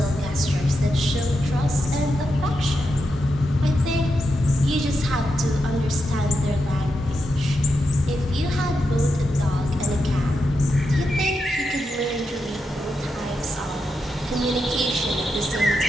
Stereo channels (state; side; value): normal; both; correlation 0.86